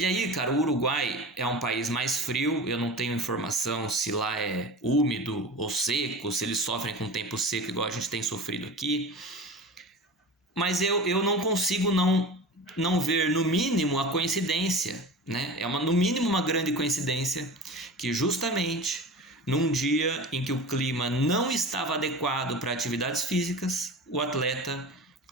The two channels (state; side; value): normal; both; correlation 0.32